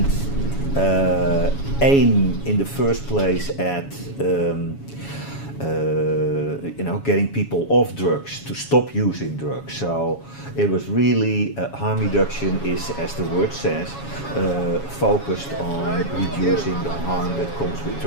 aim in the first place at getting people off drugs, to stop using drugs. So it was really, harm reduction is, as the word says, focused on reducing the harm that comes with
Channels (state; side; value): late; right; 7.2 ms